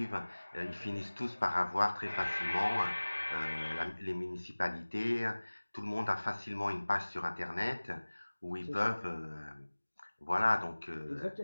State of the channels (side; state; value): both; inverted; correlation -1.00